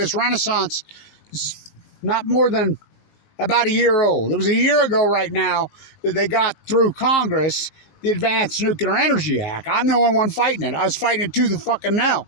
renaissance is not more than about a year old. It was a year ago right now that they got through Congress the Advanced Nuclear Energy Act. I'm the only one fighting it. I was fighting it tooth and fucking nail.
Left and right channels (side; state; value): right; late; 19 ms